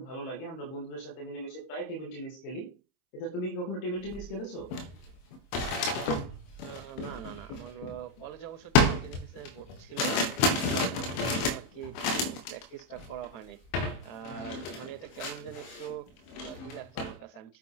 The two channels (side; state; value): right; late; 23 ms